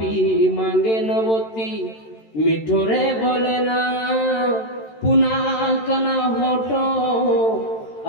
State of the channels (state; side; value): late; right; 13 ms